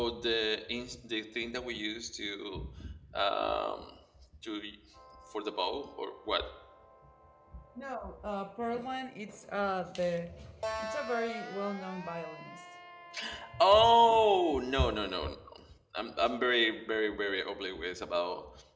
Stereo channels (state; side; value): identical; both; correlation 1.00